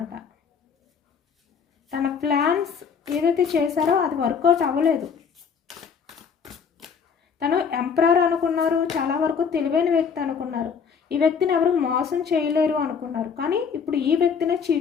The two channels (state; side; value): quieter; right; 6.3 dB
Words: తన ప్లాన్స్ ఏదైతే చేశారో అది వర్కౌట్ అవ్వలేదు. తను ఎంపరర్ అనుకున్నారు, చాలా వరకు తెలివైన వ్యక్తి అనుకున్నారు, ఈ వ్యక్తిని ఎవరు మోసం చేయలేరు అనుకున్నారు. కానీ ఇప్పుడు ఈ వ్యక్తినే